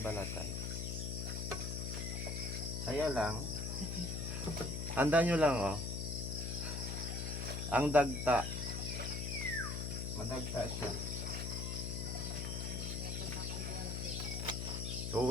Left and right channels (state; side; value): noise; left; hum, 3 dB below the sound